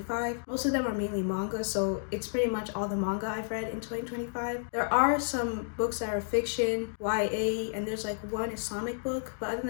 Most of them are mainly manga, so it's pretty much all the manga I've read in 2025. There are some books that are fiction, YA, and there's like one Islamic book, but other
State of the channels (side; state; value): right; silent; digital silence